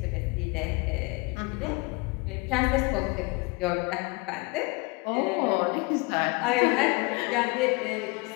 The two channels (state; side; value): quieter; right; 26.7 dB